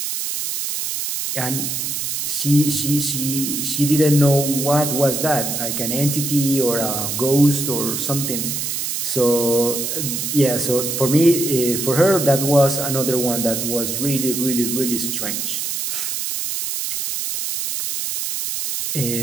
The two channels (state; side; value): noise; right; hiss, 3 dB below the sound